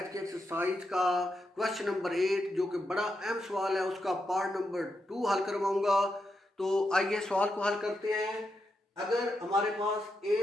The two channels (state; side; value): normal; both; correlation 0.84